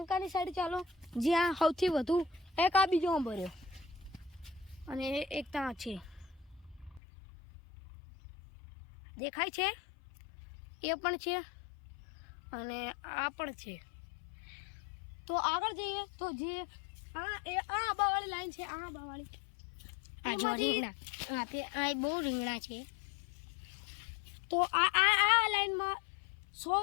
સાઈડ ચાલો, જ્યાં સૌથી વધુ. એક આ બીજો આંબો રહ્યો, અને એક ત્યાં છે દેખાય છે, એ પણ છે, અને આ પણ છે. તો આગળ જઈએ તો જે આ આંબાવાળી લાઈન છે, આ આંબાવાળી આ જો રીંગણા. આ બહુ રીંગણા છે. તો આ લાઈનમાં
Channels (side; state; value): right; drops out; at 7.0 s